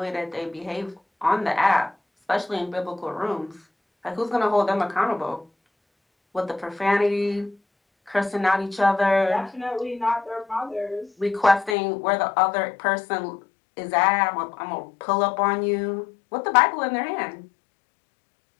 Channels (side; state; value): right; drops out; at 11.8 s